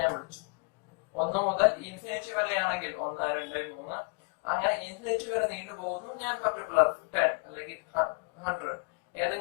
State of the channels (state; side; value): quieter; right; 37.5 dB